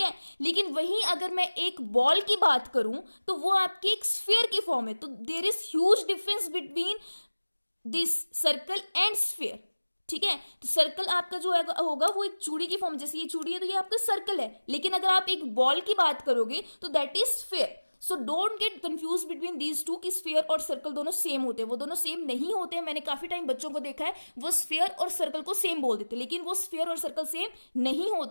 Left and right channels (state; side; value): inverted; both; correlation -1.00